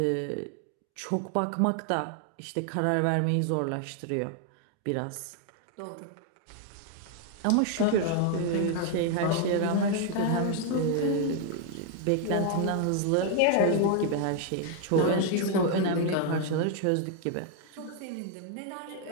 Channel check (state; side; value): different; both; correlation 0.00